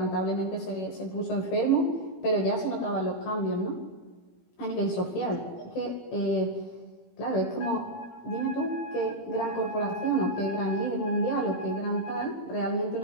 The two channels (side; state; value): right; late; 17 ms